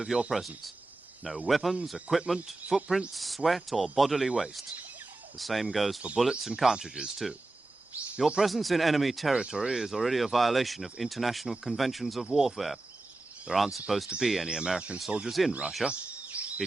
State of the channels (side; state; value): left; quieter; 3.0 dB